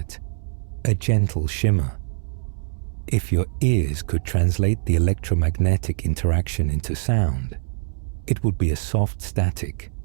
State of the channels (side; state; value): left; silent; 61 dB below the other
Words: a gentle shimmer. If your ears could translate the electromagnetic interaction into sound, it would be a soft static,